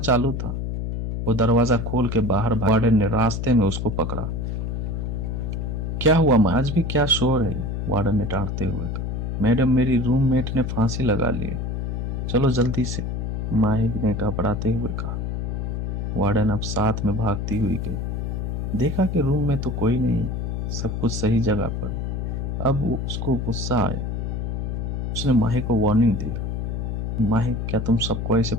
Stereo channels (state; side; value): noise; left; hum, 2 dB below the sound